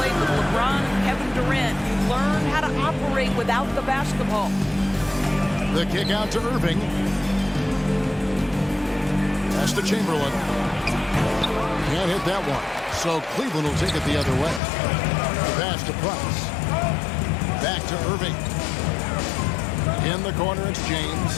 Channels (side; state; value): right; drops out; at 14.6 s